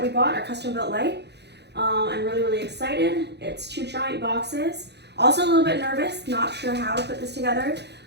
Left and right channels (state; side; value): late; left; 0.49 ms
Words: we bought, our custom built light. I'm really excited. It's 2 giant boxes. Also a little bit nervous, not sure how to put this together,